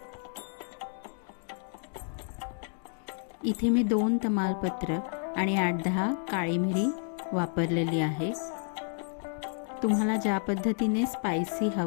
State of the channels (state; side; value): silent; right; 57 dB below the other